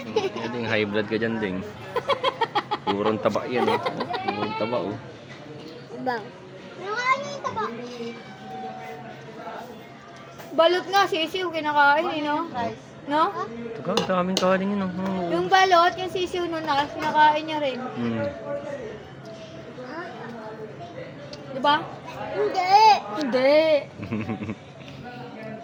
Ding high blood ka dyan, ding. Purong taba yan, oh. Purong taba, oh. Bang. Nakain niyo yung taba. Balot nga, sisiw, kinakain eh, no? No? Ito ka, daming kanin yun, oh. Yung balot, yung sisiw nun, kinakain niya rin. Hmm. Diba? Hindi. Hindi.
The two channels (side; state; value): both; identical; correlation 1.00